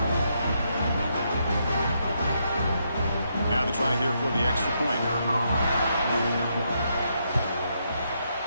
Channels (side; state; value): both; inverted; correlation -0.78